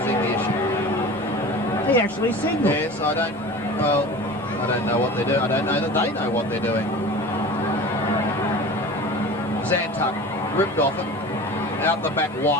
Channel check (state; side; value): normal; both; correlation 0.36